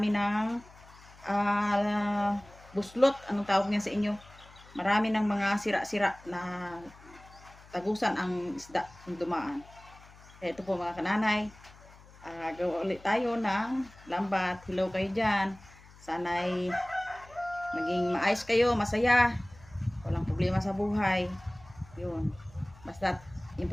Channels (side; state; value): left; noise; hum, 22 dB below the sound